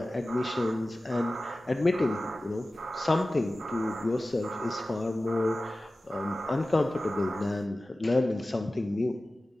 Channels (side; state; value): both; normal; correlation 0.96